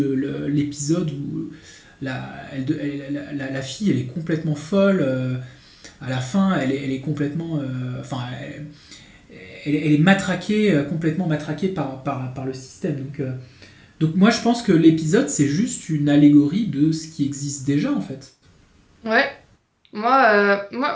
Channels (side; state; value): both; identical; correlation 1.00